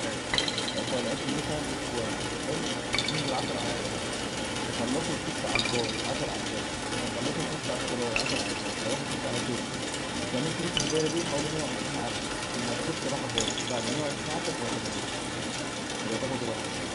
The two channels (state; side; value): identical; both; correlation 1.00